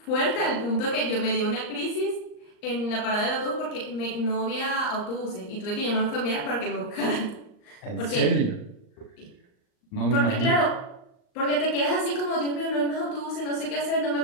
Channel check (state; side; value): late; right; 39 ms